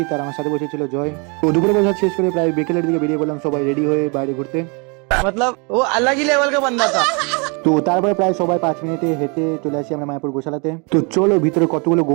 আর আমার সাথে বসেছিল জয়। তো দুপুরে প্রসাদ শেষ করে প্রায় বিকেলের দিকে বেরিয়ে পড়লাম সবাই রেডি হয়ে বাইরে ঘুরতে। मतलब वो अलग ही लेवल का बंदा था। তো তারপরে প্রায় সবাই 5 মিনিটে হেঁটে চলে আসি আমরা মায়াপুর গোশালাতে। তো চলো ভিতরে কতগুলো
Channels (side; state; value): left; quieter; 33.0 dB